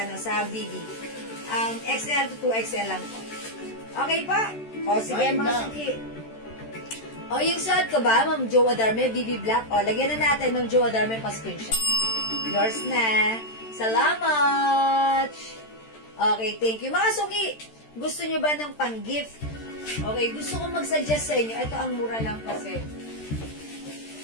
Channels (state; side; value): late; right; 13 ms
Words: BB. XL to 2XL lang po. Okay pa? O, sige, mga suki. O, yung suot ko ba, Ma'am Joe Adarme, BB Black? O, lagyan na natin, Ma'am Joe Adarme, pa-screenshot. Yours na. Salamat! Okay, thank you. Mga suki, gusto nyo ba ng pang-gift? Okay, gusto ko mag-suggest sa inyo. Ito ang mura lang kasi.